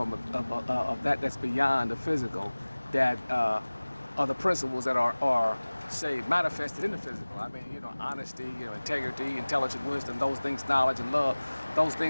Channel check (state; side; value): inverted; both; correlation -1.00